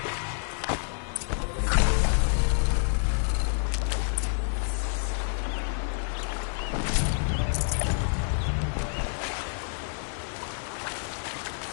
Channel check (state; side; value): silent; right; 59 dB below the other